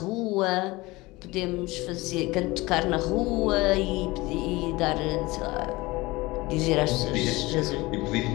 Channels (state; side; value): quieter; right; 21.4 dB